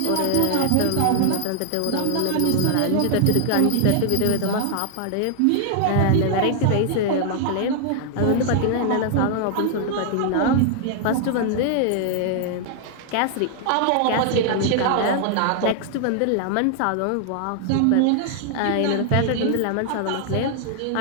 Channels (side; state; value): both; different; correlation 0.00